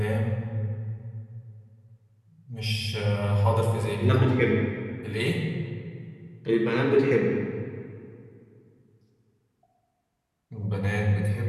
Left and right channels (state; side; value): identical; both; correlation 1.00